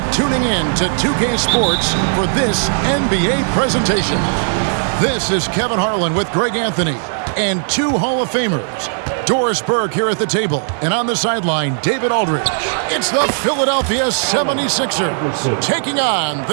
tuning in to 2K Sports for this NBA presentation. This is Kevin Harlan with Greg Anthony and two Hall of Famers. Doris Burke here at the table, and on the sideline, David Aldridge. It's the Philadelphia 76ers taking on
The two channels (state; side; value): silent; left; digital silence